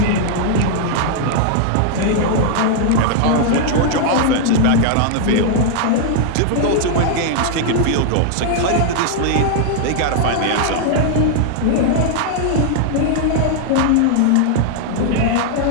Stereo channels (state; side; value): different; both; correlation 0.00